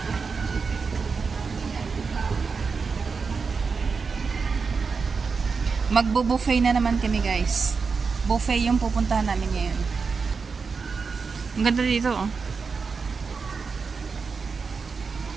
Magbo-buffet na naman kami, guys. Buffet yung pupuntahan namin ngayon. Ang ganda dito, oh.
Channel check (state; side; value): quieter; left; 5.0 dB